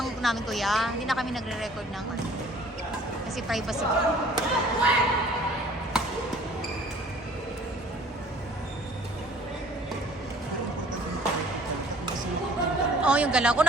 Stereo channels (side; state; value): both; normal; correlation 0.52